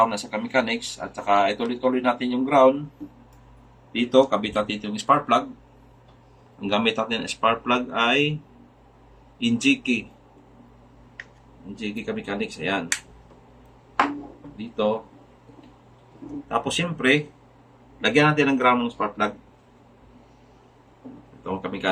na sa kamechanics. At saka ituloy-tuloy natin yung ground. Dito, kabit natin yung spark plug. Ang gamit natin ng spark plug ay Injiki. Injiki kamechanics. Ayan. Dito. Tapos siyempre, lagyan natin ng ground ng spark plug. Itong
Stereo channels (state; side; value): identical; both; correlation 1.00